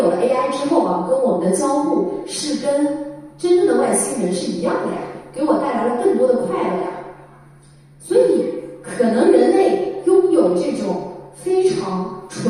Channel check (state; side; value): identical; both; correlation 1.00